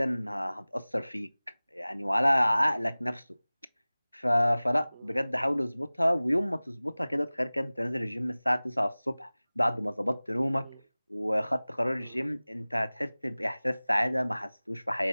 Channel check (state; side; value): inverted; both; correlation -0.99